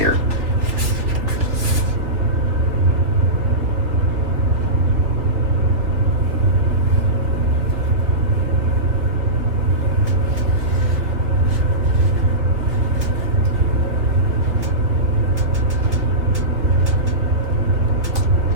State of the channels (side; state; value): left; late; 3.6 ms